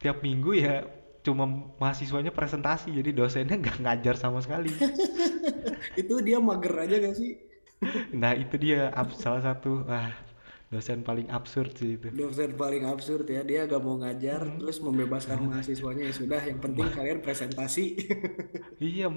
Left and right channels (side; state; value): both; inverted; correlation -1.00